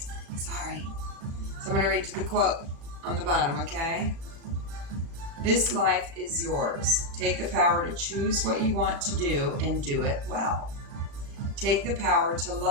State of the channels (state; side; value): late; left; 35 ms